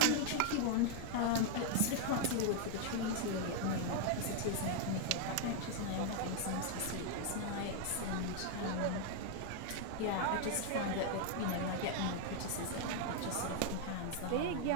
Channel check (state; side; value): different; both; correlation 0.00